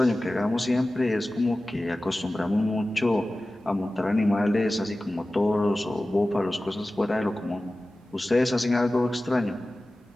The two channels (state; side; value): normal; both; correlation 0.96